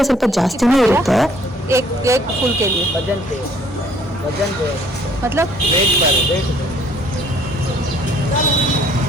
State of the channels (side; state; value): both; normal; correlation 0.60